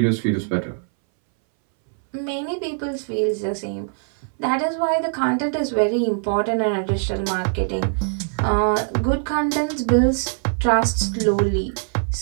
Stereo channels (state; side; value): silent; left; 62 dB below the other